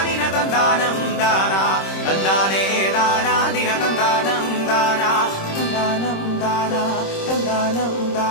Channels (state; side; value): late; right; 26 ms